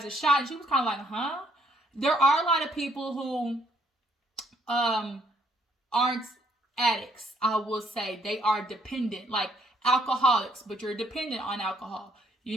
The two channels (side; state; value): both; normal; correlation 0.67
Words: a shot, and she was kind of like, huh? There are a lot of people who aren't addicts, I will say. They are dependent, like alcoholics, but you're dependent on alcohol.